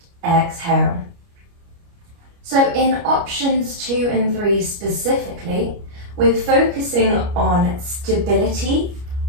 exhale. So in options 2 and 3 specifically, we're focusing on stability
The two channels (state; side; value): late; left; 29 ms